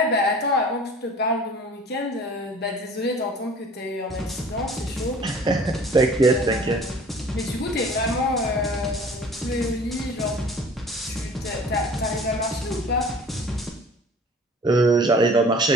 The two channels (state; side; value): normal; both; correlation 0.47